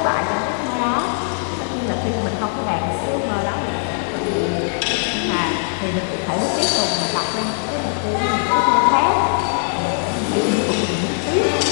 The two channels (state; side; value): silent; right; 66 dB below the other